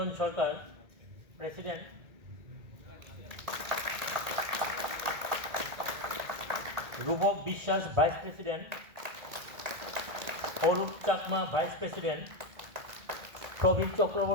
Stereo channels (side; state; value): left; late; 1.8 ms